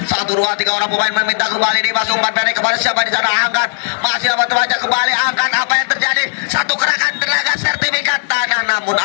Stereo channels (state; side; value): silent; right; digital silence